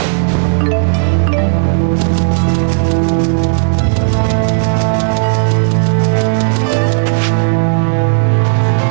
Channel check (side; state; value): left; silent; digital silence